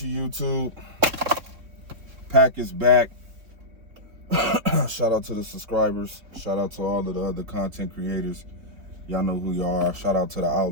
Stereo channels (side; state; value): left; late; 3.5 ms